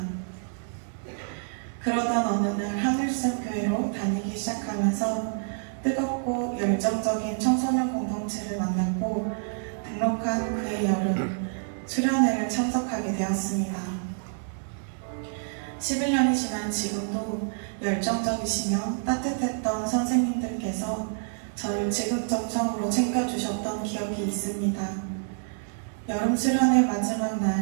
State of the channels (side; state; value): left; silent; digital silence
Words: 그러던 어느 날 하늘샘 교회로 다니기 시작하면서 뜨겁고 열정적인 청소년 공동체를 만났고, 등록한 그해 여름 수련회를 참석하게 되었습니다. 11년이 지난 지금도 열정적이시며 따뜻했던 선생님들께서 저를 지극정성으로 챙겨주셨던 기억이 있습니다. 여름 수련회 마지막